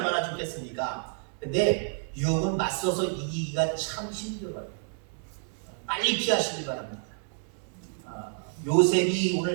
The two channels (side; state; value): left; silent; 58 dB below the other